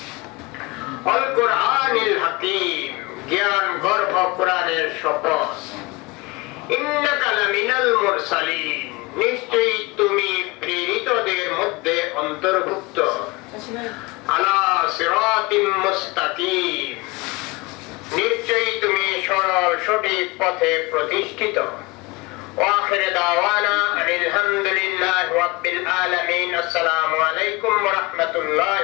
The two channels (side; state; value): right; quieter; 23.9 dB